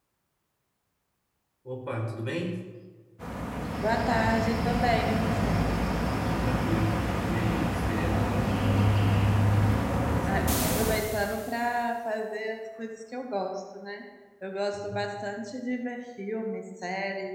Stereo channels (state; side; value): identical; both; correlation 1.00